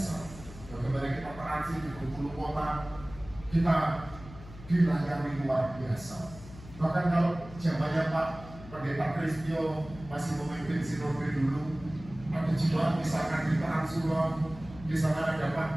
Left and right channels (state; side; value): noise; left; hum, 16 dB below the sound